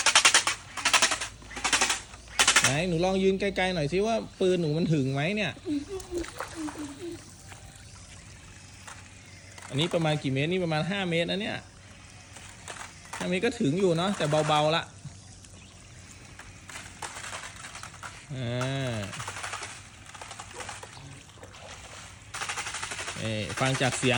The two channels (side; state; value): both; identical; correlation 1.00